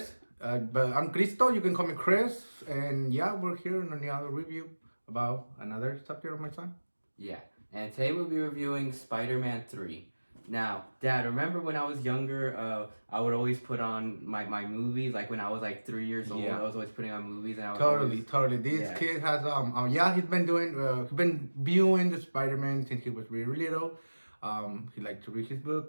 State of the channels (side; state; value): both; inverted; correlation -1.00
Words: but I'm Cristo. You can call me Chris. And yeah, we're here in another review about another subject of my son. yeah. And today we'll be reviewing Spider-Man 3. Now, Dad, remember when I was younger, I would always put on my movies, like when I was like 3 years old, I Yeah, was always putting on movies, and I would always, totally. This yeah, kid has yeah, he's been viewing the Spider-Man since he was really little. He liked to read his